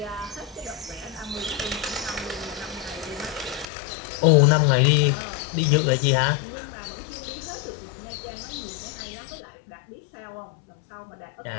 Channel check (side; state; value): right; drops out; at 3.7 s